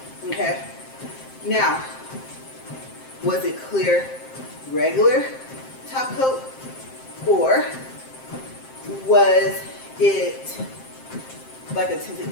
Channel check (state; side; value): late; right; 7.6 ms